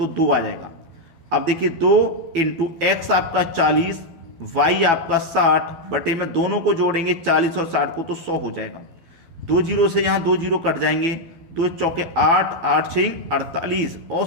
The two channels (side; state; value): left; late; 12 ms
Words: 2 आ जाएगा। अब देखिए 2 इंटू एक्स आपका 40, y आपका 60 बटे में दोनों को जोड़ेंगे 40 और 60 को तो 100 हो जाएगा। 2 जीरो से यहाँ 2 जीरो कट जाएंगे, 2 चौके 8, 8 6 48,